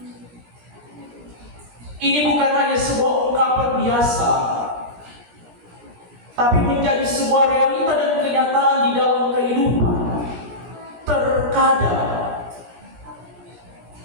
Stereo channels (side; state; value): left; late; 17 ms